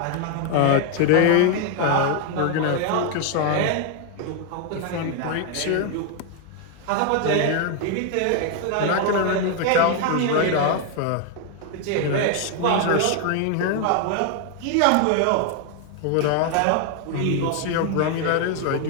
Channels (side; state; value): both; different; correlation 0.01